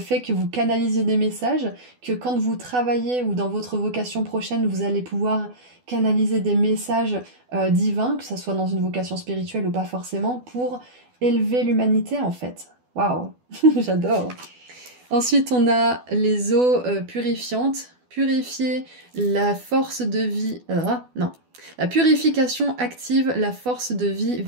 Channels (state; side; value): late; left; 12 ms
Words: que vous canalisiez des messages, que quand vous travaillez ou dans votre vocation prochaine, vous allez pouvoir canaliser des messages divins, que ce soit dans une vocation spirituelle ou pas forcément, pour élever l'humanité en fait. Waouh, j'adore. Ensuite, on a les eaux purifiantes. Purifier la force de vie... non. La purification active la force de vie